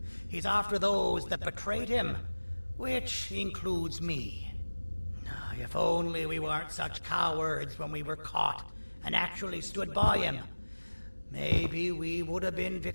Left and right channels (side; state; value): both; inverted; correlation -1.00